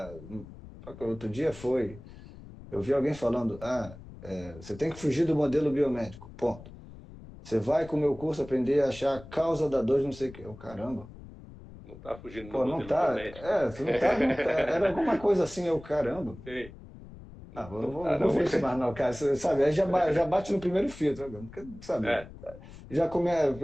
Outro dia foi. Eu vi alguém falando: você tem que fugir do modelo biomédico. Ponto. Você vai com o meu curso aprender a achar a causa da dor de não sei o quê. Eu, caramba. não tá fugindo do Pô, não modelo tá. biomédico, né? Você não tá. Era alguma coisa assim, eu, caramba. Sim. Não Não vou, tá, não vou não. ver isso mais não, cara. Você sabe, aí já bate no primeiro filtro, né? Porque, sabe? É,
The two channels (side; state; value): left; noise; rumble, 17 dB below the sound